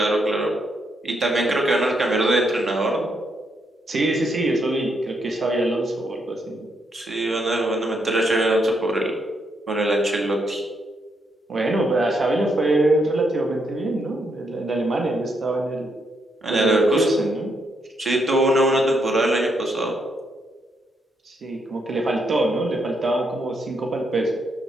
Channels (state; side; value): normal; both; correlation 0.77